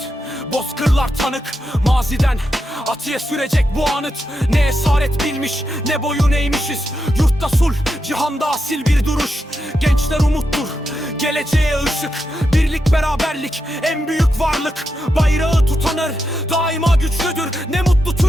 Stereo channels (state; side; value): normal; both; correlation 0.86